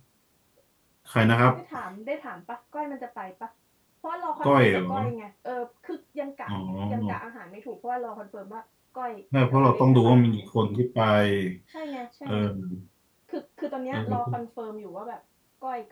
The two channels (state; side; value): identical; both; correlation 1.00